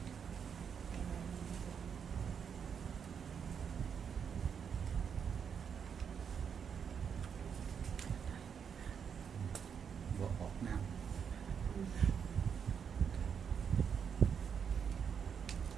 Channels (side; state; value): left; quieter; 7.2 dB